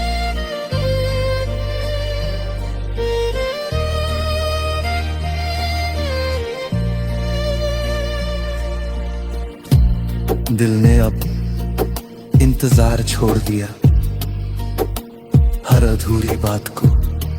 दिल ने अब इंतजार छोड़ दिया, हर अधूरी बात को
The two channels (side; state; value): both; identical; correlation 1.00